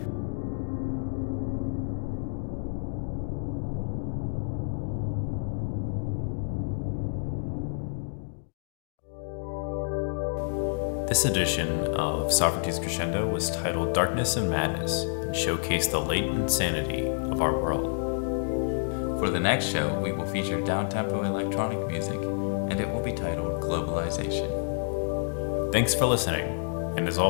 This edition of Sovereignty's Crescendo was titled Darkness and Madness and showcased the latent insanity of our world. For the next show, we will feature down-tempo electronic music, and it will be titled Globalization. Thanks for listening, and as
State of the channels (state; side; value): silent; right; digital silence